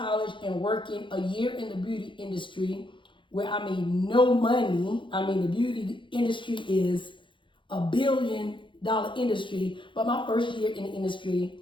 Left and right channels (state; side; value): late; right; 0.24 ms